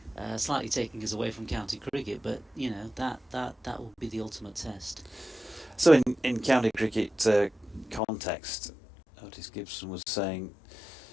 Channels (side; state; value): right; drops out; at 8.0 s